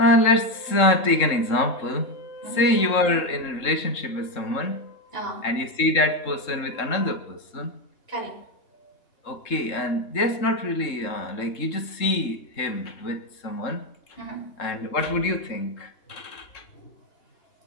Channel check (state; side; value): late; right; 3.7 ms